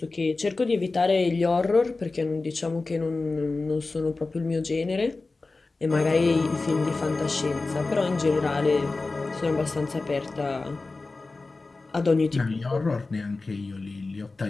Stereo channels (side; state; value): right; quieter; 3.6 dB